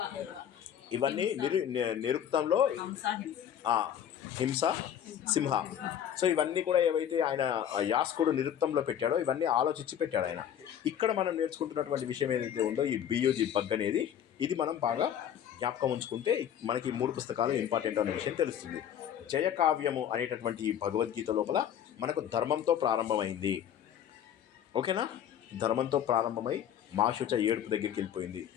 ఇవన్నీ నిరుక్తంలో హింస, సింహ. సో ఇవన్నీ కూడా ఏవైతే ఆయన యాస్కుడు నిరుక్తంలో పెట్టాడో ఇవన్నీ ఆలోచించి పెట్టాడు ఆయన. ఇక్కడ మనం నేర్చుకుంటున్నటువంటి విషయం ఏదైతే ఉందో ఈ బియూజీ బగ్ అనేది, ఇది మనం బాగా జ్ఞాపకం ఉంచుకుంటే మనకి 3 పుస్తకాలు ఇంపార్టెంట్ అనే విషయం తెలుస్తుంది. జయకావ్యము అనేటటువంటి ఈ భగవద్గీత లోపల మనకు ధర్మంతో ప్రారంభమైంది. ఓకేనా? ధర్మంతో ప్రారంభమై మాశుచ ఏడుపు దగ్గరికి వెళ్ళిపోయింది.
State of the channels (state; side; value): quieter; right; 9.6 dB